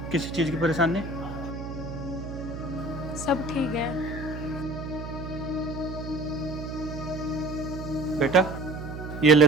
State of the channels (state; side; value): noise; right; hum, 8 dB below the sound